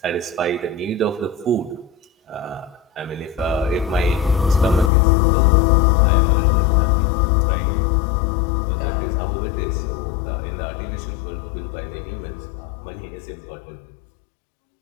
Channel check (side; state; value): right; drops out; at 4.9 s